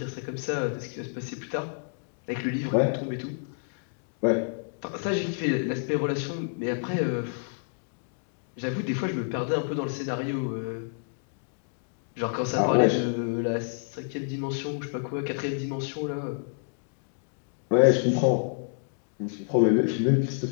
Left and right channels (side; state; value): right; silent; digital silence